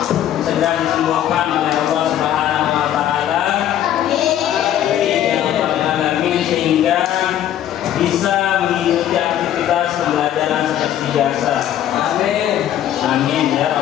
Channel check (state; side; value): quieter; right; 11.3 dB